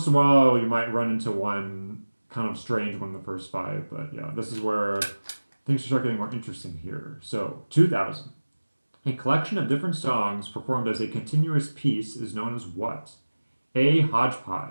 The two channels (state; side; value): inverted; both; correlation -1.00